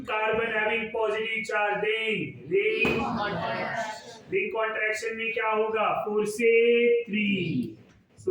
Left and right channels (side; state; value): both; identical; correlation 1.00